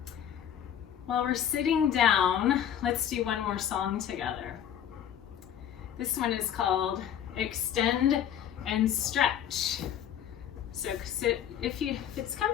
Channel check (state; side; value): quieter; right; 9.7 dB